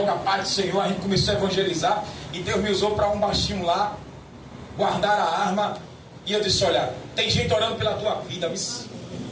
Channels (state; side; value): identical; both; correlation 1.00